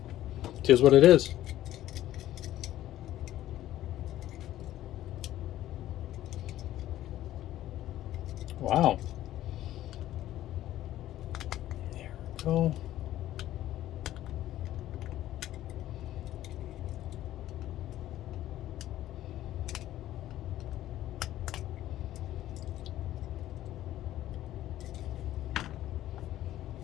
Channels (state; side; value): quieter; right; 13.6 dB